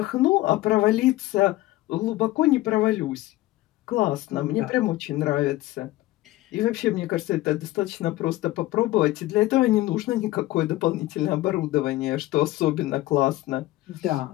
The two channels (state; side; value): quieter; right; 17.0 dB